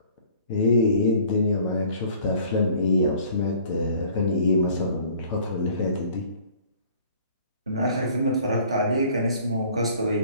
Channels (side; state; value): both; inverted; correlation -0.53